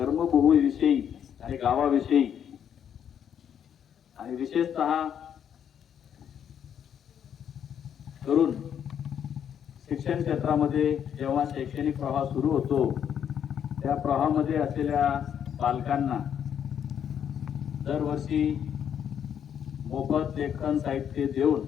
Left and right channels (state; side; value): quieter; right; 8.8 dB